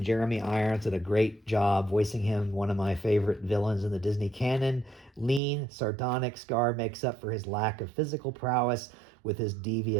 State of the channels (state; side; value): drops out; left; at 5.4 s